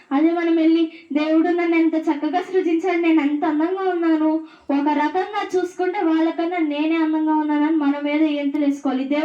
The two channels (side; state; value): both; identical; correlation 1.00